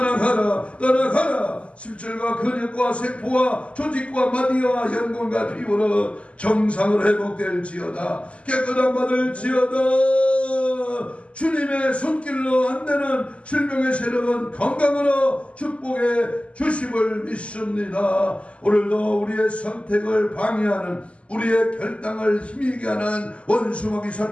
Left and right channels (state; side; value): late; right; 0.060 ms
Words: 떠나가라. 심줄과 근육과 세포와 조직과 마디와 연골과 피부로 정상으로 회복될지어다. 깨끗함 받을지어다. 주님의 손길로 안 되는 질병의 세력은 건강으로 축복해 주심을 믿습니다. 오늘도 우리의 선택을 방해하는 우리의 결단을 힘이게 하는 원수마귀